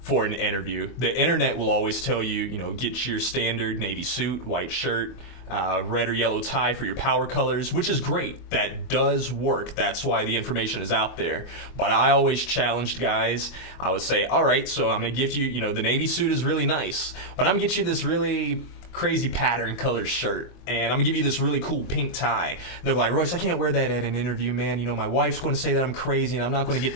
for an interview. The internet will always tell you, get your standard navy suit, white shirt, red or yellow tie for your power colors, which is great. That does work. That's why the information is out there. But I always challenged guys. I would say, all right, so I'm going to gift you, the navy suit is really nice, but I'm going to get you this really crazy pattern color shirt, and I'm going to give you this really cool pink tie. And they're like, Royce, I can't wear that at an interview, man. My wife's going to say that I'm crazy and I'm not going to get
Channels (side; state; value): right; late; 24 ms